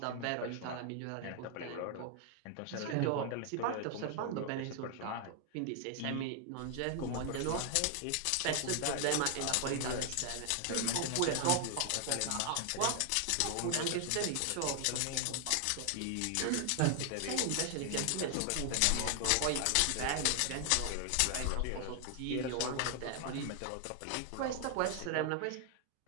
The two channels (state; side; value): different; both; correlation 0.00